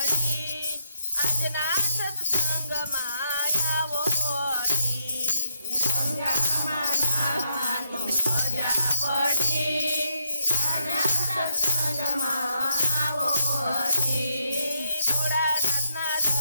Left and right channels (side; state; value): both; inverted; correlation -0.78